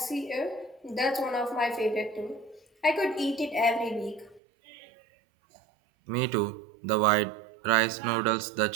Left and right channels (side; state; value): left; drops out; at 4.4 s